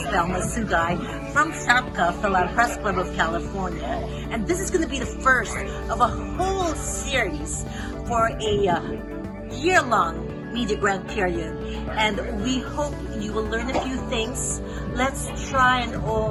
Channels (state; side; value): identical; both; correlation 1.00